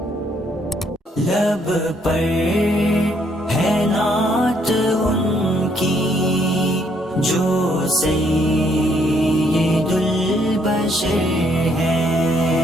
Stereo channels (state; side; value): normal; both; correlation 0.70